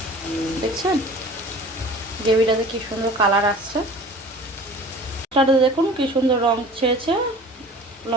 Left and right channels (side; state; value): both; normal; correlation 0.43